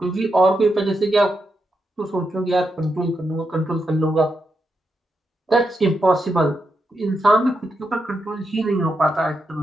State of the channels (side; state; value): both; normal; correlation 0.84